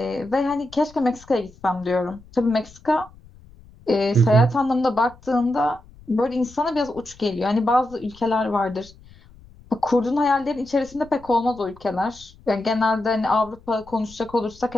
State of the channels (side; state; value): left; noise; rumble, 24 dB below the sound